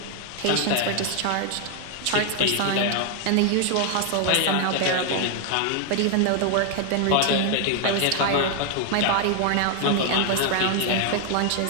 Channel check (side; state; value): both; different; correlation 0.00